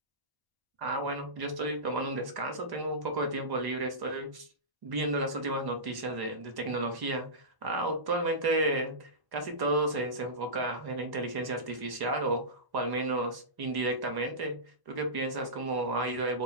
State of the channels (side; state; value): left; late; 1.1 ms